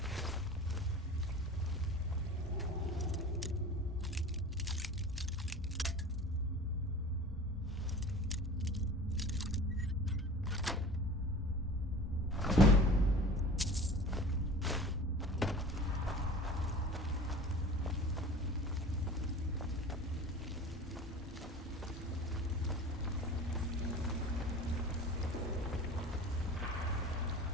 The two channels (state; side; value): normal; both; correlation 0.39